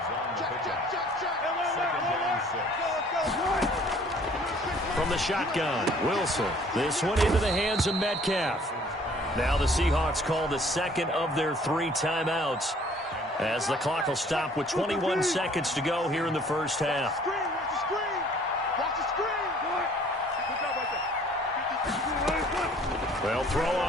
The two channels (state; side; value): normal; both; correlation 0.56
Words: From the shotgun, Wilson. This one into the hands of Metcalf. Now the Seahawks call the 2nd of their 3 timeouts, as the clock will stop with 21 seconds to go here in the first half. They'll throw